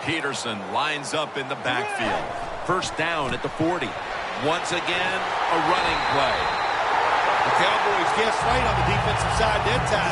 Peterson lines up in the backfield. First down at the 40. Once again, a running play. The Cowboys guessed right on the defensive side that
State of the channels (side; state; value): both; identical; correlation 1.00